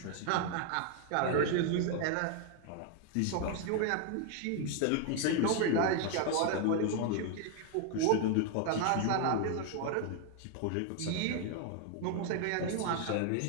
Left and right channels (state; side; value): different; both; correlation 0.00